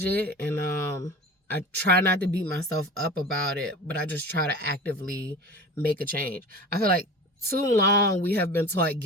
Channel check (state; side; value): normal; both; correlation 0.35